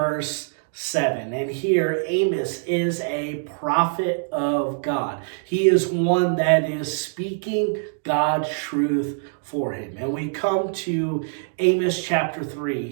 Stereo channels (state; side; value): silent; left; digital silence